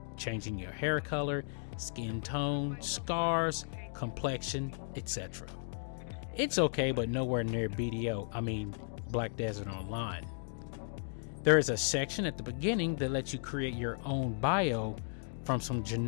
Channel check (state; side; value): silent; right; digital silence